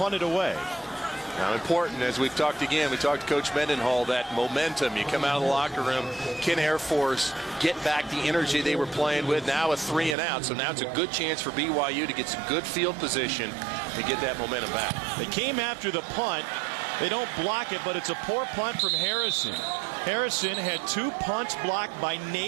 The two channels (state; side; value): drops out; left; at 10.2 s